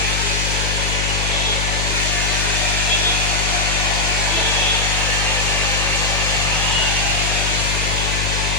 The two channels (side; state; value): left; noise; hum, 2 dB below the sound